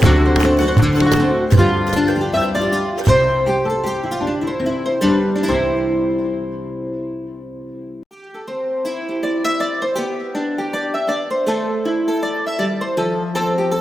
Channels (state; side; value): normal; both; correlation 0.91